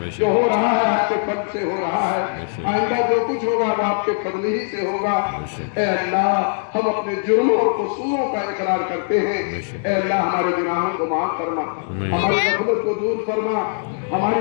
جو ہو رہا ہے آپ کے فضل سے ہو رہا ہے، آئندہ جو کچھ ہوگا وہ آپ کے فضل ہی سے ہوگا۔ اے اللہ ہم اپنے جرموں اور قصوروں کا اقرار کرتے ہیں، اے اللہ ہمارے گناہوں کو معاف فرما، ہماری غفلت کو دور فرما،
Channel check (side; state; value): right; silent; digital silence